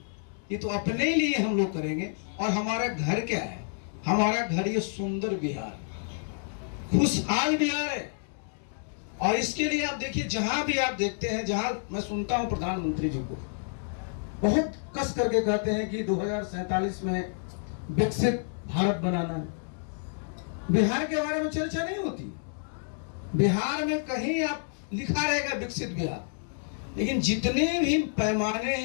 ये तो अपने लिए हम लोग करेंगे। और हमारा घर क्या है, हमारा घर ये सुंदर बिहार, खुशहाल बिहार है। और इसके लिए आप देखिए, जहां भी आप देखते हैं, जहां मैं सुनता हूं प्रधानमंत्री जी को बहुत कस करके कहते हैं कि 2047 में विकसित भारत बनाना है, बिहार के बारे में चर्चा नहीं होती। बिहार में कहीं आप लिखा रहेगा विकसित बिहार, लेकिन जितने भी पैमाने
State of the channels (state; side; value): silent; right; 59 dB below the other